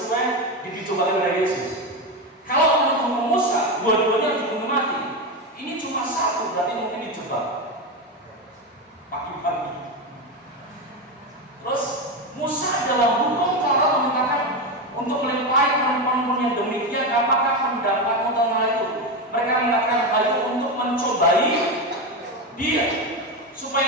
dicobakan dari Yesus. Kalau menurut hukum Musa, dua-duanya dibunuh mati. Ini cuma satu, berarti mungkin dijebak pagi-pagi. Terus Musa dalam hukum Taurat mengatakan untuk melempari perempuan yang demikian, apakah pendapatmu tentang hal itu? Mereka mengatakan hal itu untuk mencobai dia.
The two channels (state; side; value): normal; both; correlation 0.14